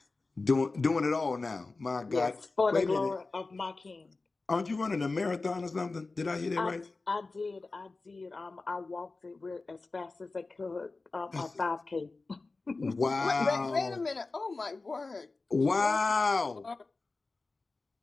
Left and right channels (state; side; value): quieter; right; 3.6 dB